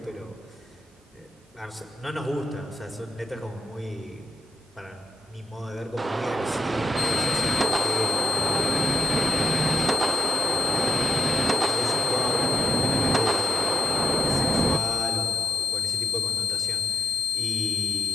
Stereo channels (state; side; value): normal; both; correlation 0.84